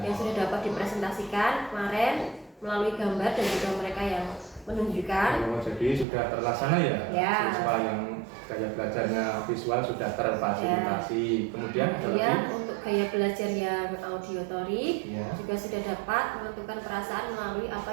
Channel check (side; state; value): left; drops out; at 6.1 s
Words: yang sudah dapat dipresentasikan kemarin melalui gambar dan juga mereka yang menunjukkan. Oh, jadi sudah terlaksana ya? Ya. Siswa yang gaya belajarnya visual sudah terfasilitasi. Kemudian ada Kemudian lagi? untuk gaya belajar yang auditory Ya. juga sudah dapat menentukan perasaan melalui apa